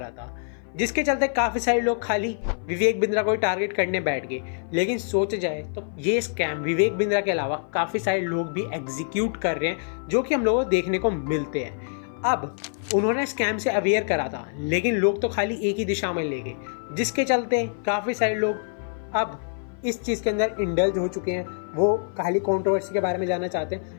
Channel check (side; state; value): right; silent; 57 dB below the other